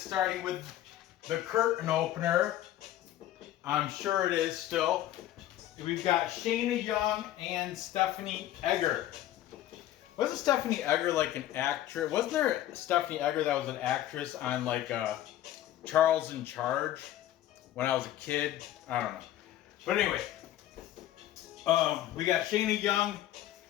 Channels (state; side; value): quieter; right; 13.3 dB